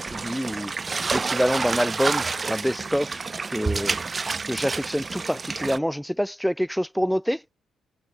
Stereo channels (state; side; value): normal; both; correlation 0.98